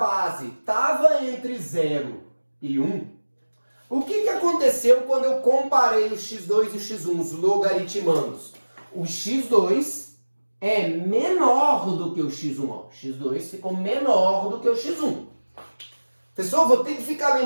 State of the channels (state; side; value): inverted; both; correlation -1.00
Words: estava entre 0 e 1. O que aconteceu quando eu comparei o x2 e o x1, os logaritmandos? O x2 é menor do que o x1. Ó. O x2 ficou menor do que o x1. Pessoal, vou ter que ficar